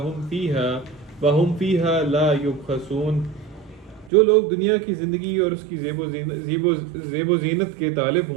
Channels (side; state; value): left; drops out; at 4.1 s